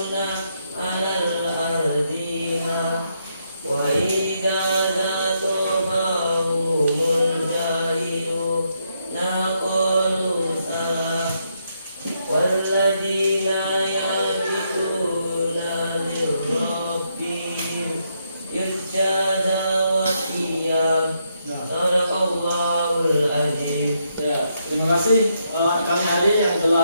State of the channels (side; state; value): both; inverted; correlation -0.78